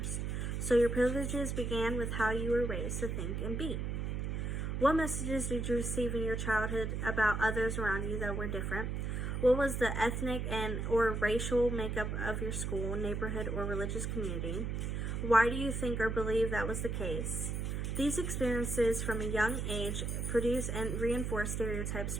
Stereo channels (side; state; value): right; noise; hum, 2 dB below the sound